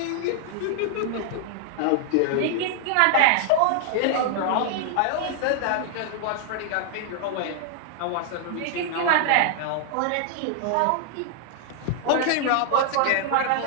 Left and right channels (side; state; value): both; different; correlation 0.00